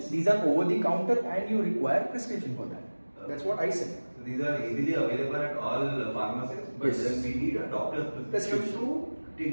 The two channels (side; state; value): both; inverted; correlation -1.00